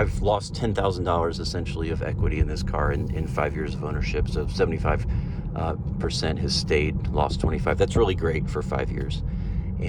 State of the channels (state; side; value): identical; both; correlation 1.00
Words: lost $10,000 essentially of equity in this car in 5 years of ownership. So 75% has stayed, lost 25. That's really great for 5 years,